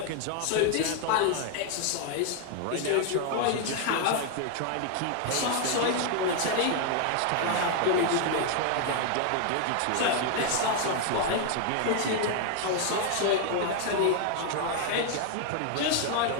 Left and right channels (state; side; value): different; both; correlation 0.00